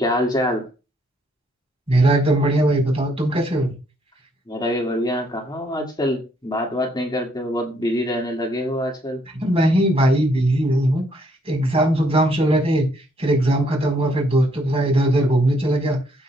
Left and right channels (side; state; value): both; normal; correlation 0.69